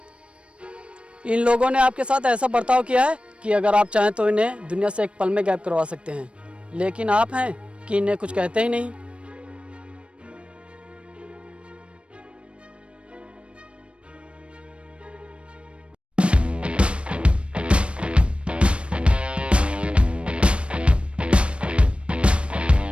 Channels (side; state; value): left; late; 0.059 ms